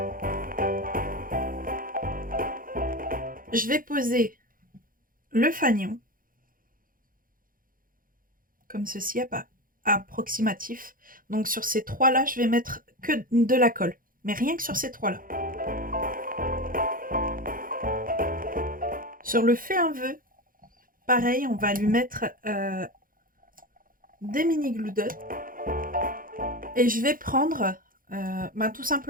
Je vais poser le fanion comme ceci, approximatif. Donc sur ces trois là, je vais mettre que de la colle, mais rien que sur ces trois là. Sur le fais un vœu, pareil, on va lui mettre des mini glue dots et je vais prendre tout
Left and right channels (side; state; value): left; late; 0.41 ms